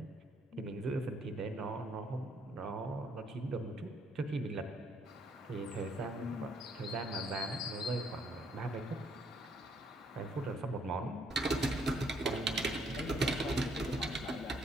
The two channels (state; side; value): normal; both; correlation 0.68